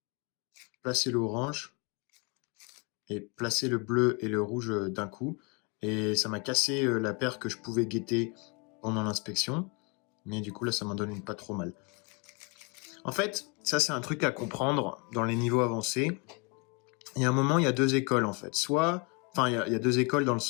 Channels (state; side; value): quieter; right; 32.4 dB